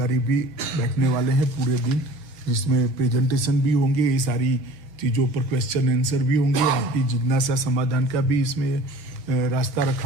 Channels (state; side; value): late; left; 6.7 ms